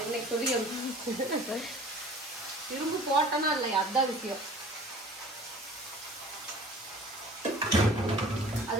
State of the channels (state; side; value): normal; both; correlation 0.46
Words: இன்னைக்கு சொல்லி திரும்ப போட்டனா இல்லையா, அதுதான் விஷயம். அது